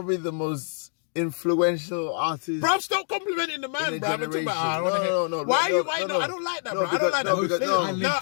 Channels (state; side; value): silent; right; digital silence